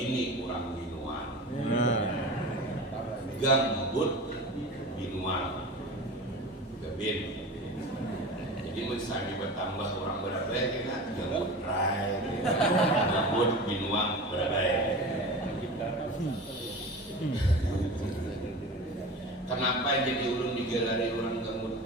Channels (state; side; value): normal; both; correlation 0.32